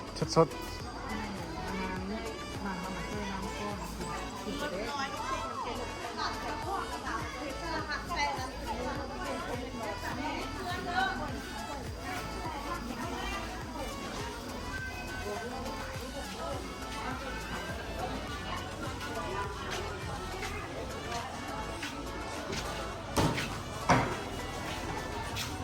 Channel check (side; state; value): both; identical; correlation 1.00